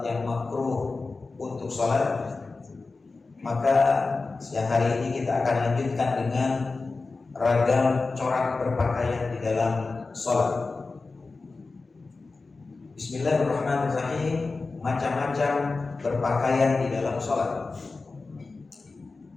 yang makruh untuk sholat. Maka siang hari ini kita akan lanjutkan dengan ragam corak berpakaian di dalam sholat. Bismillahirrahmanirrahim. Macam-macam berpakaian di dalam sholat.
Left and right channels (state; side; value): quieter; right; 3.8 dB